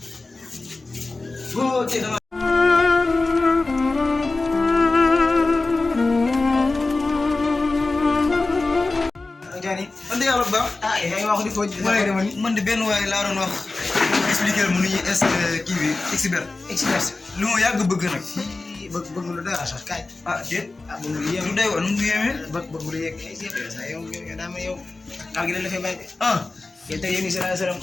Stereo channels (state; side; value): quieter; right; 3.4 dB